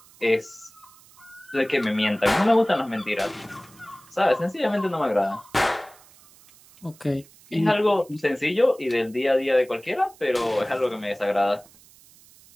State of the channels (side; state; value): right; noise; hiss, 26 dB below the sound